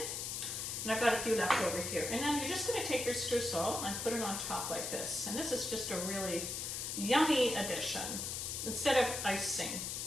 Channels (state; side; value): noise; left; hiss, 3 dB below the sound